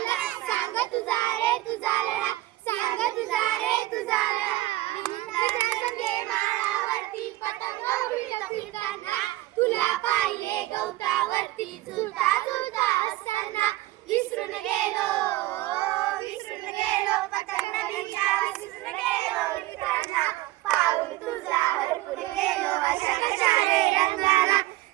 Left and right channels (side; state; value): left; quieter; 17.5 dB